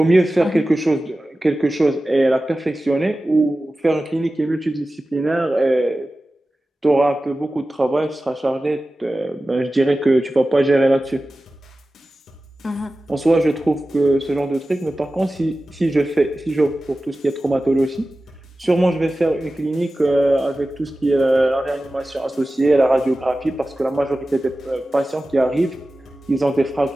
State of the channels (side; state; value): both; normal; correlation 0.95